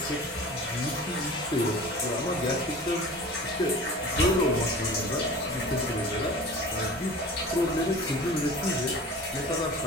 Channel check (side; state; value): both; normal; correlation 0.39